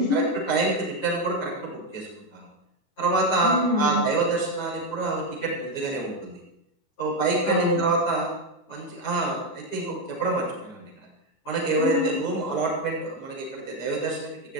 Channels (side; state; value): right; late; 14 ms